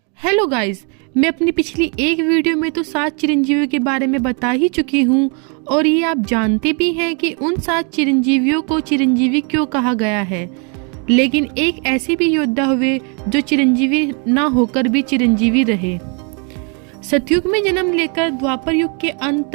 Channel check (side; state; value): left; quieter; 36.6 dB